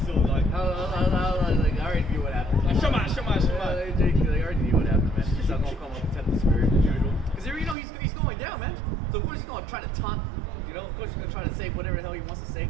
like. I already knew what happened. Like, Shema. They already knew what happened, man. He's not gonna come up and tempt the spirit as usual. Because you know he's going down, man. So of course he's gonna try to taunt. You know, of course he's gonna try to say whatever the hell he wants to say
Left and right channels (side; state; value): left; drops out; at 7.8 s